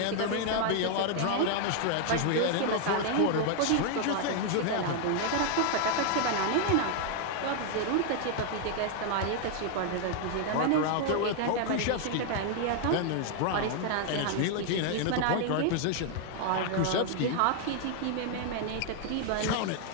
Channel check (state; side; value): different; both; correlation 0.00